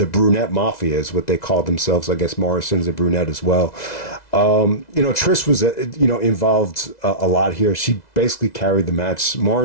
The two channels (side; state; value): right; late; 2.0 ms